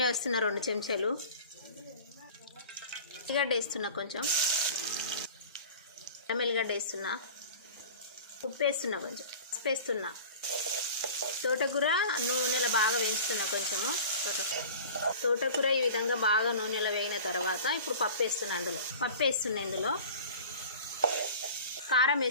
వేస్తున్నా 2 చెంచాలు. ఉల్లిగడ్డ వేస్తున్నా, కొంచెం ఎల్లిగడ్డ వేస్తున్నా, ఉప్పు వేస్తున్నా, కొంచెం పసుపు వేస్తున్నా. తోటకూర నూనెలో బాగా వేయించుతున్నా. కొంచెము తోటకూర ఈ విధంగా బాగా నూనెలో వేగిన తర్వాత ఇప్పుడు పప్పు వేస్తున్నా. ఇందులో కారం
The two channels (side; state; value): both; inverted; correlation -0.40